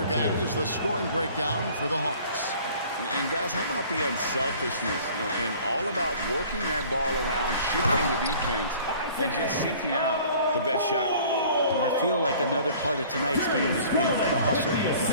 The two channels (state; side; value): inverted; both; correlation -0.50